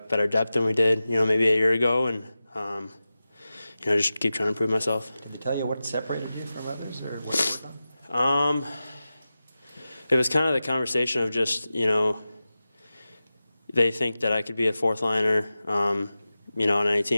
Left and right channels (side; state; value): both; inverted; correlation -0.94